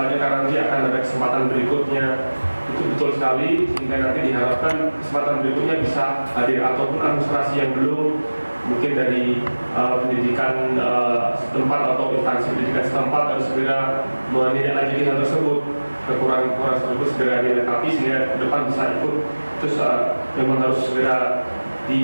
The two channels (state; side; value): inverted; both; correlation -1.00